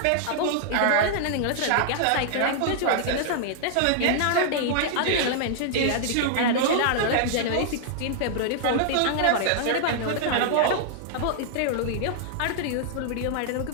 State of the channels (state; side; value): different; both; correlation -0.01